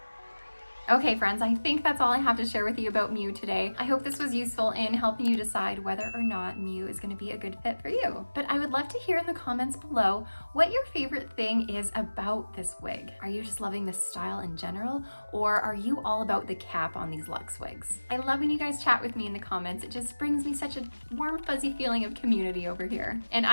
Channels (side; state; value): both; inverted; correlation -1.00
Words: Okay friends, I think that's all I have to share with you about Mew today. I hope this was useful in helping you decide whether or not Mew is going to be a good fit for you. But I would love to hear in the comments below what your favorite thing is about this wig. Are you just loving this style in general, or are you all about the cap on these luxe wigs? I love when you guys chat with me in the comments. It just brings me such a warm, fuzzy feeling of community over here. And